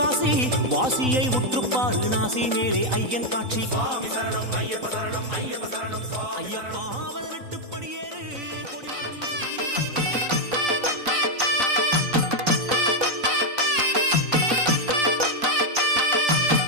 வாசியை உற்றுப்பாரு நாசி மேலே ஐயன் காட்சி. சுவாமி சரணம் ஐயப்ப சரணம் ஐயப்ப சரணம் சுவாமி. ஐயப்பா 18 படியேறு கொடிமரம்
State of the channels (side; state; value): left; late; 3.9 ms